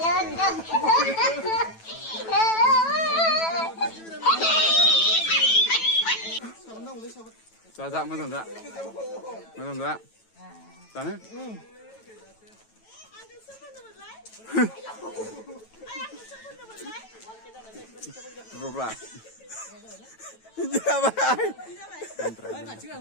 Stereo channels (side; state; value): right; late; 9.1 ms